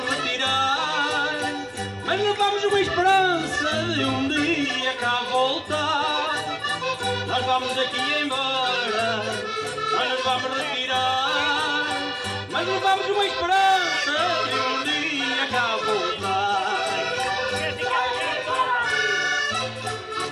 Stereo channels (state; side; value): identical; both; correlation 1.00